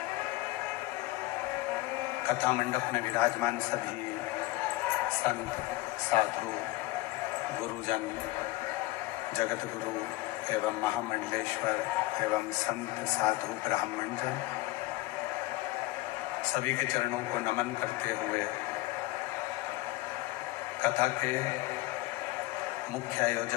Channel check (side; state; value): right; quieter; 19.0 dB